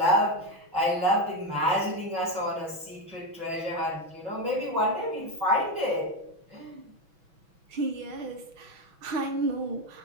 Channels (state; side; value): late; left; 6.1 ms